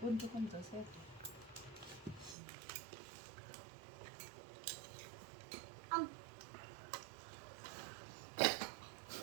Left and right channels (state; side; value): drops out; left; at 2.4 s